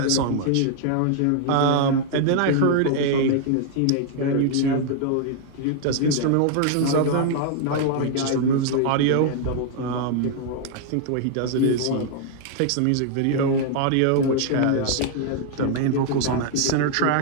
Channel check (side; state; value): both; different; correlation 0.00